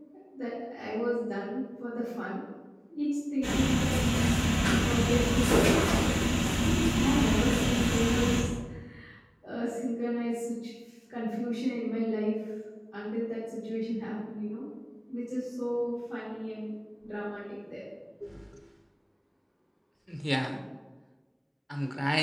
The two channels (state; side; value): identical; both; correlation 1.00